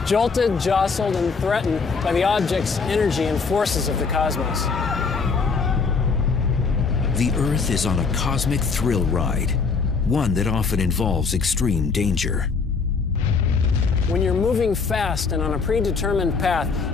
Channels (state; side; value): quieter; right; 4.9 dB